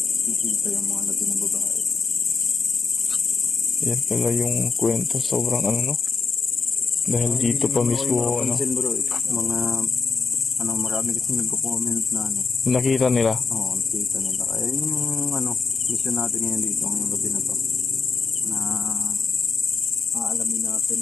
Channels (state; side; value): quieter; right; 4.7 dB